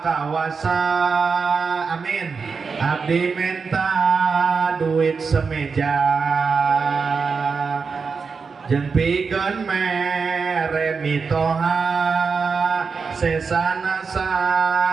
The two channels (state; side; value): quieter; left; 5.2 dB